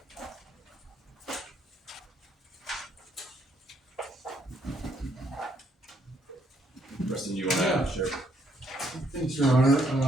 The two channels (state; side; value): normal; both; correlation 0.71